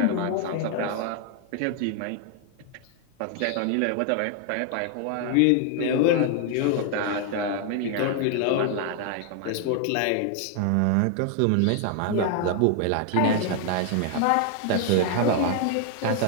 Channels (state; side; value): different; both; correlation 0.00